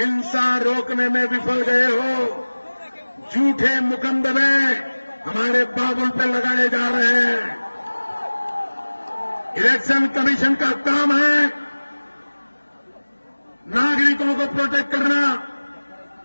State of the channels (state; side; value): inverted; both; correlation -1.00